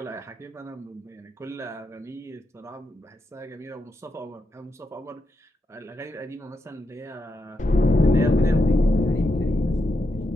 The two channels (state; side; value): normal; both; correlation 0.84